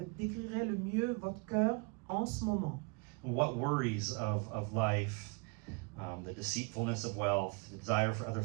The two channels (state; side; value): quieter; left; 30.8 dB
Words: décrirait le mieux votre cœur en ce moment? What worries of life, the deceitfulness of wealth, the desire for other